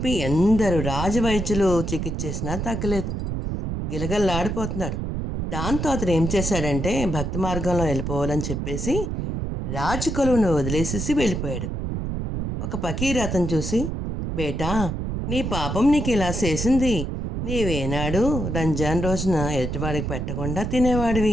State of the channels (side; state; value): right; noise; rumble, 3 dB below the sound